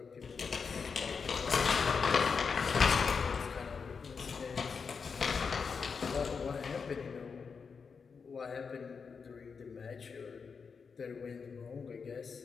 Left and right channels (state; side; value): quieter; right; 5.6 dB